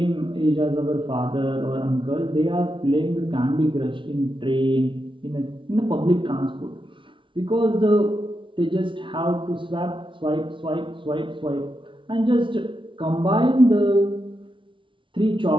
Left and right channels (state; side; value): late; left; 0.25 ms